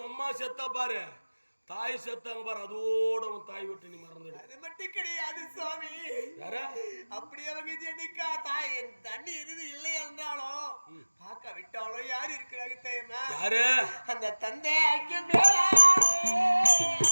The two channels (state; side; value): inverted; both; correlation -1.00